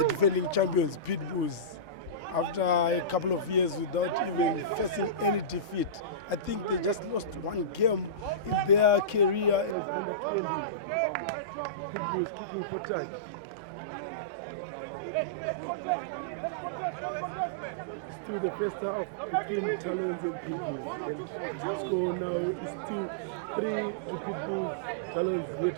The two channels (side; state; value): left; drops out; at 9.8 s